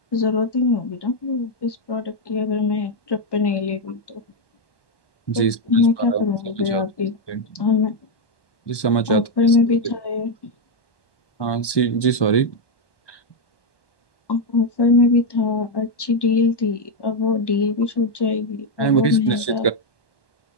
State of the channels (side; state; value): right; late; 1.1 ms